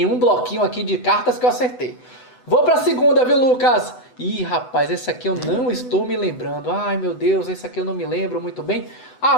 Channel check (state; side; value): late; right; 8.0 ms